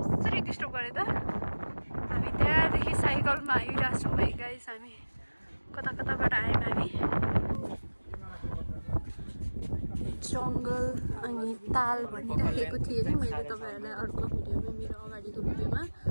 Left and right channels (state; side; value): inverted; both; correlation -1.00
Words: कसरी डिस्टर्ब गरे त? हामी त्यहाँदेखि साइकलमा आइरहेछौँ है गाइस। हामी कताबाट आयौँ हामी। जङ्गल अनि ताल भनिराखेको थिएँ नि मैले तपाईहरुलाई अर्को भिडियोमा, मेरो अगाडिको भिडियोमा।